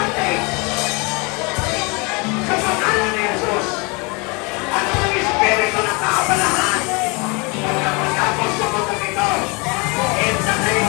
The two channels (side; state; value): right; quieter; 29.1 dB